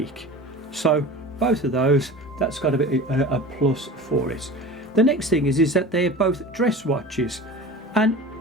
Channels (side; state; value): both; normal; correlation 0.36